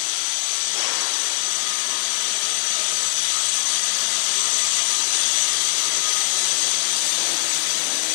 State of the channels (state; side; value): silent; right; 62 dB below the other